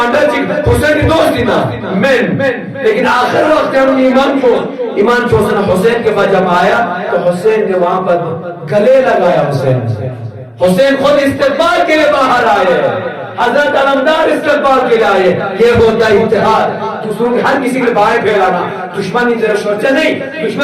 حسین کی دوستی نا من، لیکن آخر وقت ہم ایمان چوسن حسین کے بعد جب آیا تو حسین نے وہاں پر گلے لگایا، حسین خود استقبال کے لیے باہر آئے، حضرت علمدار استقبال کے لیے آئے۔ یہ ہوتا ہے اتحاد، دوسروں کے ہر کسی کے باہر پھیلانا، دشمنی تیرا شورچہ نہیں،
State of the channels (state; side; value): identical; both; correlation 1.00